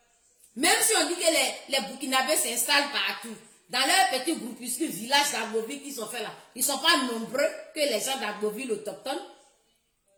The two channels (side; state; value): both; identical; correlation 1.00